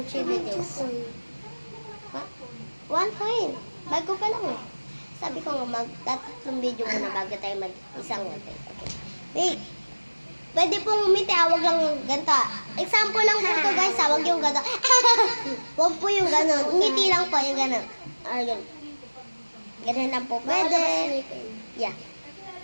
3 videos. What? 1 point. Bago pa lang eh. Sabi ko nga, magtatatlong video muna bago tayo mag-isang 1 point. Okay. Wait. Pwede pong umiti, wag lang yung ganito. Example lang po ito guys, wag yung gano'n. Wag po yung gano'n. Ngiti lang po yung gano'n. Ayun. Ganun lang po pwede. Yeah.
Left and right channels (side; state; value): both; inverted; correlation -1.00